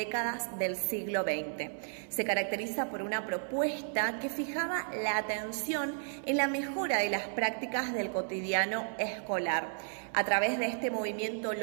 del siglo XX. Se caracteriza por una propuesta que fijaba la atención en la mejora de las prácticas del cotidiano escolar. A través de este movimiento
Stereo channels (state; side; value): silent; left; 56 dB below the other